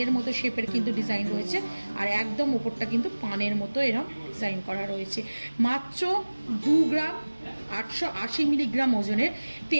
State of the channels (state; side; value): inverted; both; correlation -1.00